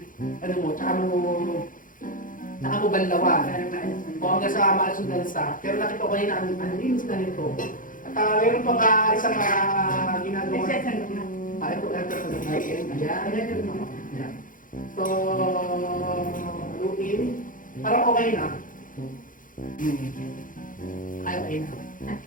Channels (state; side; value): late; right; 0.39 ms